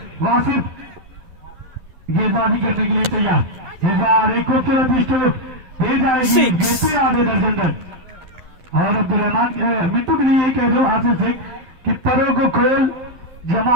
वासिफ गेंदबाजी करने के लिए तैयार, एक खूबसूरत स्ट्रोक दे जाएगी, जीते आधे दर्जन रन। और अब्दुलरहमान मिट्टू के लिए कह दो आशीष सिंह कि परों को खोल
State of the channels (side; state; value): left; late; 11 ms